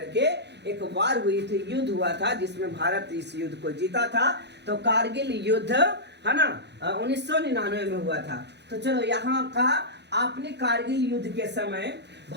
के एक वार हुई थी, युद्ध हुआ था, जिसमें भारत इस युद्ध को जीता था। तो कारगिल युद्ध है ना 1999 में हुआ था। तो चलो यहाँ का, आपने कारगिल युद्ध के समय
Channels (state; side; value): late; left; 0.50 ms